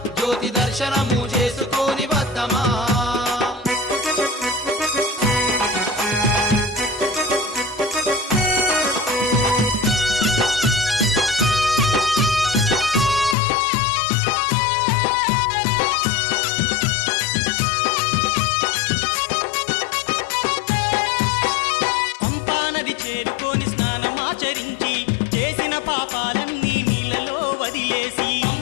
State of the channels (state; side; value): drops out; right; at 13.4 s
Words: జ్యోతి దర్శనము చేసుకొని వద్దమా చేరుకొని స్నానమాచరించి చేసిన పాపాలన్నీ నీళ్ళలో వదిలేసి